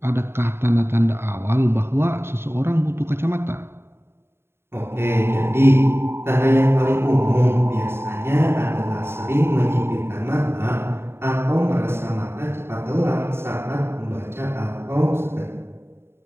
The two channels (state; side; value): late; left; 0.12 ms